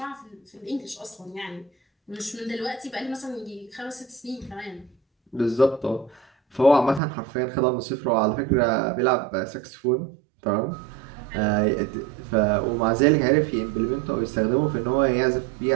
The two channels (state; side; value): drops out; left; at 7.0 s